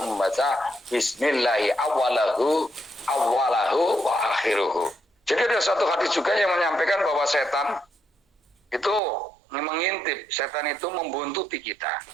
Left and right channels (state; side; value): drops out; left; at 9.0 s